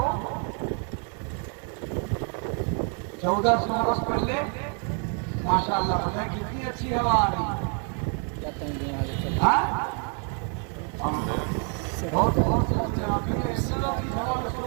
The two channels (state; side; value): quieter; left; 39.1 dB